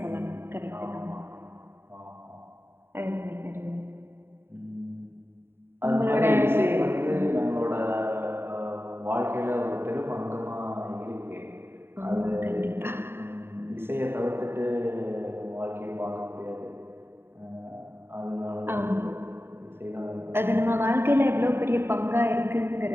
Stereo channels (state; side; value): late; left; 0.11 ms